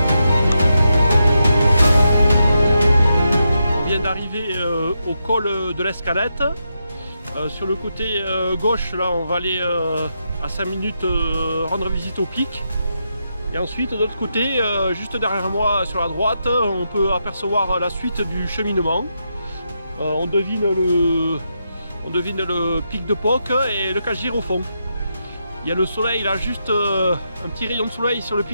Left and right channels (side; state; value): both; inverted; correlation -0.84